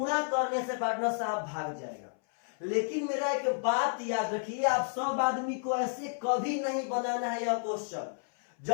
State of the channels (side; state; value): right; silent; 57 dB below the other